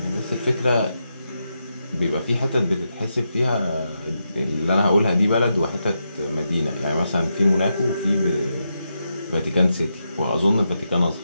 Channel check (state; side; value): inverted; both; correlation -0.85